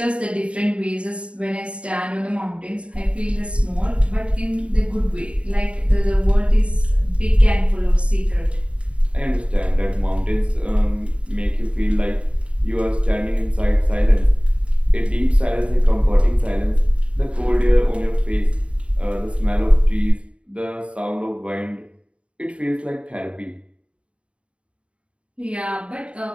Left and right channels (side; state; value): left; late; 0.060 ms